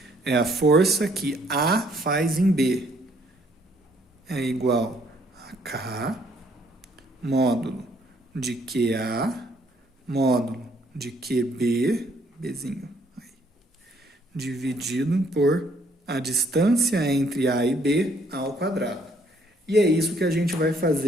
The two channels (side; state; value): both; normal; correlation 0.66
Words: é a força que A faz em B. É igual a K, módulo de QA, módulo de QB, Bzinho, aí, dividido por a distância entre A e B ao quadrado. E é isso que a gente vai